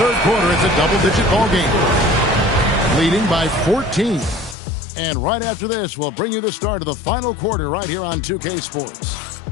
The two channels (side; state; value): right; drops out; at 4.5 s